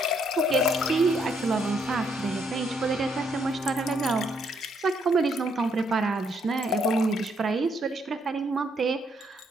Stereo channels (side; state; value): both; normal; correlation 0.72